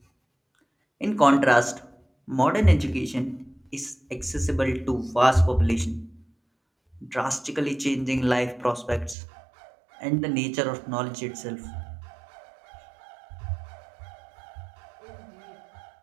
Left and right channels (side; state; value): left; drops out; at 9.2 s